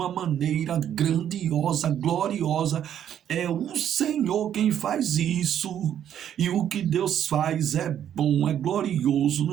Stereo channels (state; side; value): quieter; left; 10.0 dB